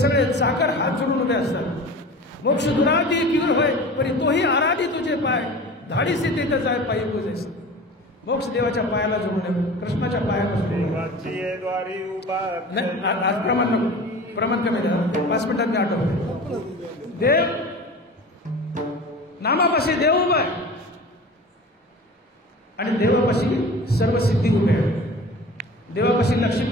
चाकर हात जोडून उभे असतात. मोक्ष दुराधी किवर होय, परी तोही आराधी तुझे पाय, धाडीसी तिथे जाय पायी पूजेस. मोक्ष देवाच्या पायाला जोडून, कृष्णाच्या पायापासून. नाही, आज प्रमाण नको, प्रमाण कमी द्या. 5 मिनिटात मी आठवतो. देव नामापाशी देव उभा आहे आणि देवापाशी सर्व सिद्धी उभे आहे. देवापाशी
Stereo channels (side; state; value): both; normal; correlation 0.37